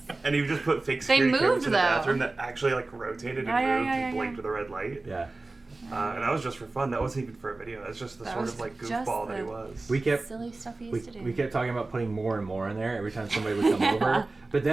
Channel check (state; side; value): quieter; left; 3.3 dB